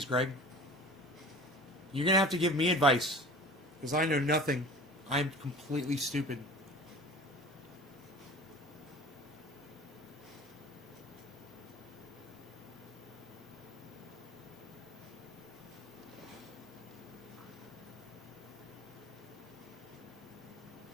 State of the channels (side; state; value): both; normal; correlation 0.41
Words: Greg? You're going to have to give me advice because I know nothing. I'm completely stupid.